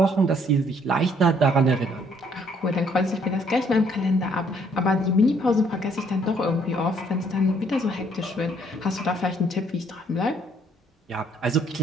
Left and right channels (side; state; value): both; normal; correlation 0.65